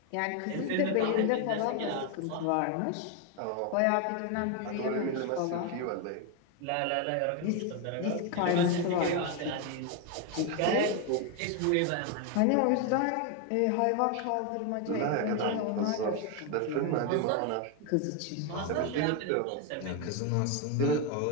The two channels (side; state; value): both; different; correlation 0.01